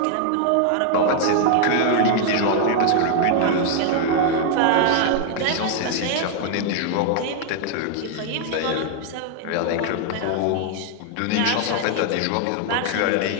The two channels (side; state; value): both; different; correlation 0.00